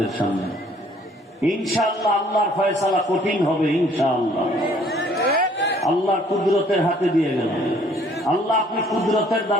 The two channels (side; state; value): both; normal; correlation 0.59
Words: সামনে। ইনশাআল্লাহ আল্লাহর ফয়সালা কঠিন হবে, ইনশাআল্লাহ আল্লাহর কুদরতের হাতে দিয়ে গেলাম। আল্লাহ আপনি কুদরতের